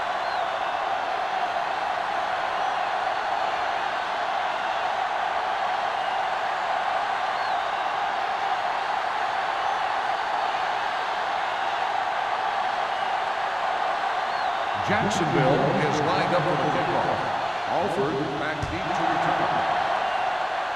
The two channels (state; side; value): identical; both; correlation 1.00